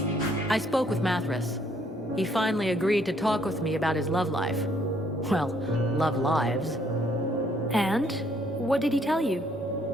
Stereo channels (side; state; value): both; normal; correlation 0.67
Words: I spoke with Mathras. He finally agreed to talk with me about his love life. Well, love lives. And? What did he tell you?